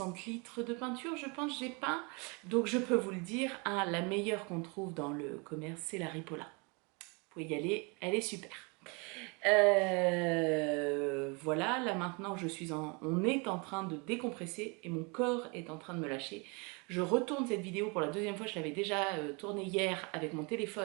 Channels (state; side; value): quieter; left; 30.9 dB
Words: litres de peinture, je pense, j'ai peint. Donc je peux vous le dire, la meilleure qu'on trouve dans le commerce, c'est la Ripolla. Vous pouvez y aller, elle est super. Voilà, là maintenant on est en train de décompresser et mon corps est en train de me lâcher. Je retourne cette vidéo pour la deuxième fois, je l'avais déjà tournée hier avec mon